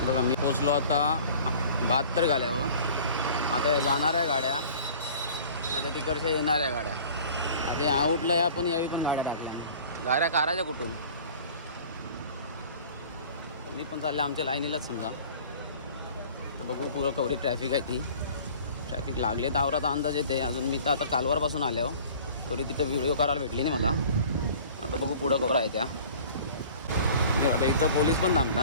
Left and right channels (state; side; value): inverted; both; correlation -0.46